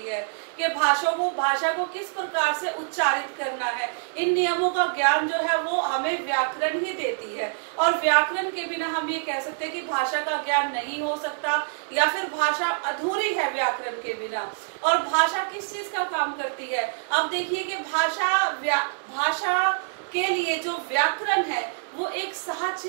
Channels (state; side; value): silent; left; digital silence